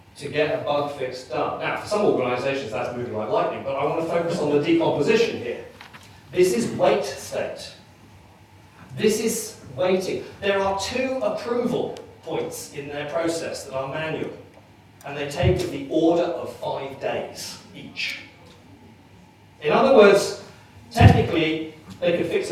to get a bug fix done. Now, for some organisations that's moving like lightning, but I want to focus on the decomposition here. This is wait state. This is waiting. There are 2 approval points in their process that are manual, and they take the order of 5 days each. In other words, technically, they could fix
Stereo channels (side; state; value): both; identical; correlation 1.00